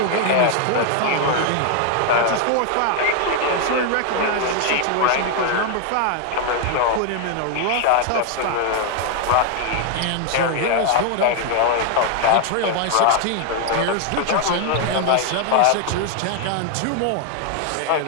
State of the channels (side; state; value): both; different; correlation 0.00